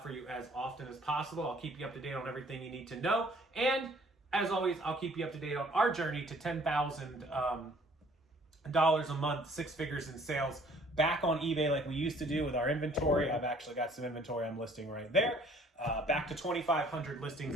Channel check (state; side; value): normal; both; correlation 0.57